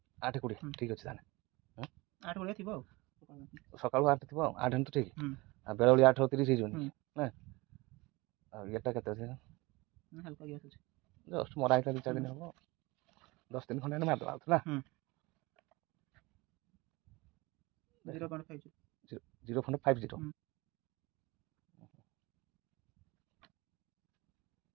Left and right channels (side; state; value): left; quieter; 23.1 dB